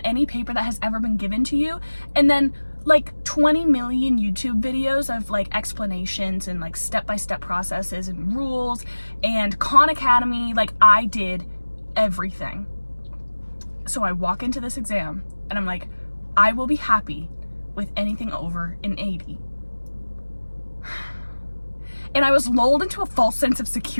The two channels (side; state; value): both; inverted; correlation -1.00